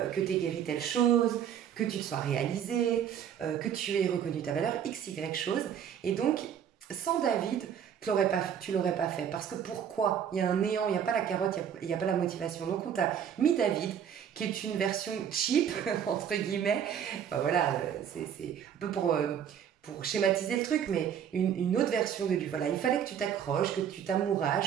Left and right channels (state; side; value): quieter; left; 8.7 dB